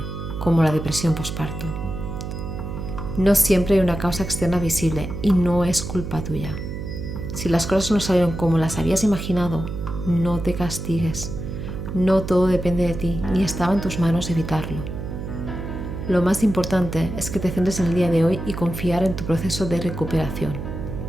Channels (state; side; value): noise; right; hum, 7 dB below the sound